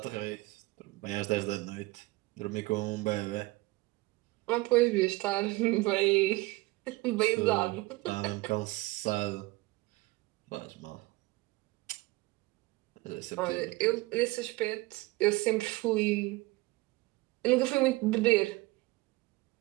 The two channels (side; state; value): left; quieter; 21.6 dB